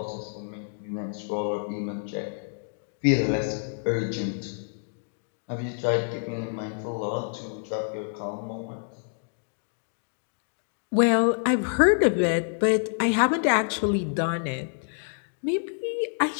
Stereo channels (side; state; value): right; silent; digital silence